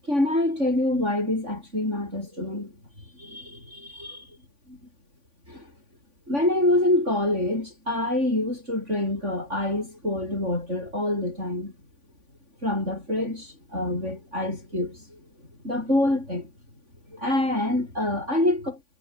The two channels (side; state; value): left; late; 3.5 ms